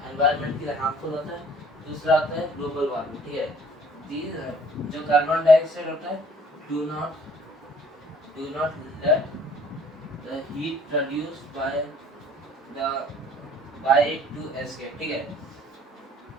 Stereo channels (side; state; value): both; normal; correlation 0.56